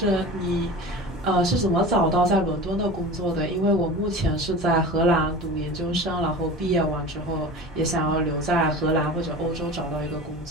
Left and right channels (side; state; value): both; normal; correlation 0.34